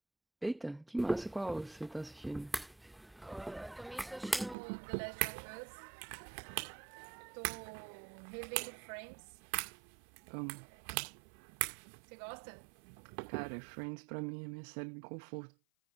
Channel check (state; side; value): drops out; left; at 4.5 s